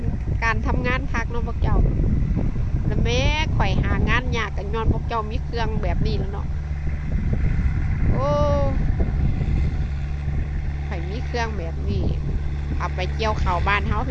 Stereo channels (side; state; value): both; identical; correlation 1.00